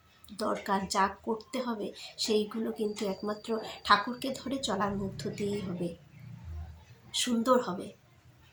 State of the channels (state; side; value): identical; both; correlation 1.00